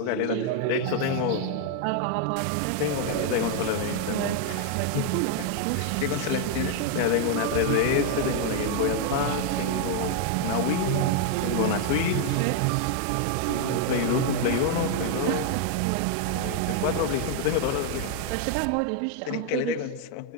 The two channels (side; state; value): both; different; correlation 0.01